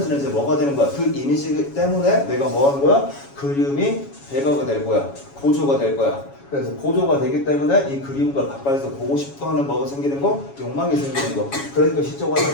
이제 뭐가 되는 거야? 그 이미지 때문에 내가 뭐 하는 거야? 그림이 배가가 될 거야. 고조가 될 거야. 그래서 고조가 되기 때문에 이 그림과 가까이서 보고 싶어 하는 뭐가 생기는 거? 욕망이 생기는 거. 그러니까 시적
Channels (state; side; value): late; right; 7.2 ms